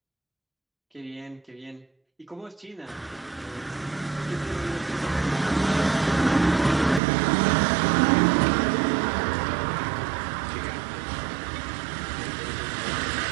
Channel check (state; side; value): drops out; left; at 7.0 s